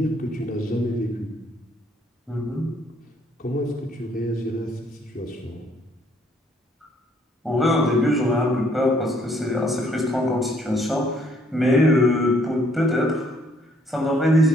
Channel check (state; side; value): normal; both; correlation 0.66